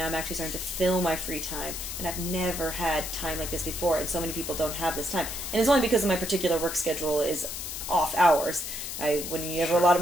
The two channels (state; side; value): noise; left; hiss, 6 dB below the sound